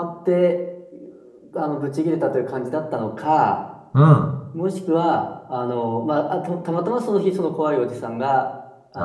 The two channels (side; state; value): both; identical; correlation 1.00